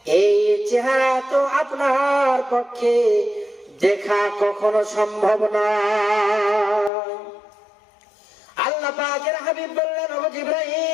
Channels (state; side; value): drops out; right; at 6.9 s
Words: এই চেহারা তো আপনার পক্ষে দেখা কখনো সম্ভব নয়। আল্লাহ আল্লাহ পাকের হাবিব বললেন, ও